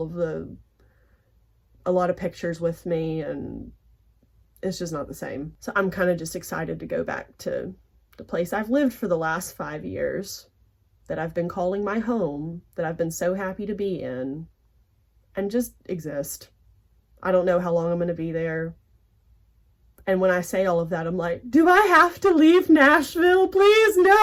lot of pictures with me, and it's just not the same. So I'm kind of just excited to go back to the place I've lived for the last 5 years, that I've been calling my home, that I've been so happy to be in, and just exist. I don't know how long I'm going to be there. And when I say all of that, I'm like, do I have to leave Nashville? Please,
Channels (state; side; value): identical; both; correlation 1.00